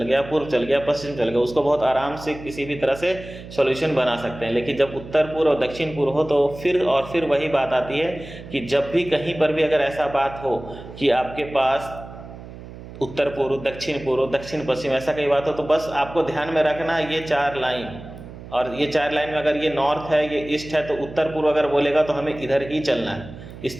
गया, पूर्व चल गया, पश्चिम चल गया, उसको बहुत आराम से किसी भी तरह से सॉल्यूशन बना सकते हैं। लेकिन जब उत्तर पूर्व और दक्षिण पूर्व हो, तो फिर वही बात आती है कि जब भी कहीं पर भी अगर ऐसा बात हो कि आपके पास उत्तर पूर्व, दक्षिण पूर्व, दक्षिण पश्चिम, ऐसा कई बात हो, तो बस आपको ध्यान में रखना ये 4 लाइन, और ये 4 लाइन में अगर ये नॉर्थ है, ये ईस्ट है, तो उत्तर पूर्व अगर बोलेगा तो हमें इधर ही चलना है, इस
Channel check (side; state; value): right; noise; hum, 14 dB below the sound